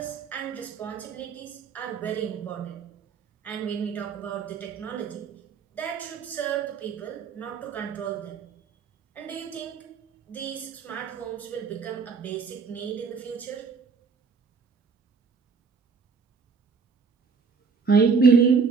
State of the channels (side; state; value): left; quieter; 5.4 dB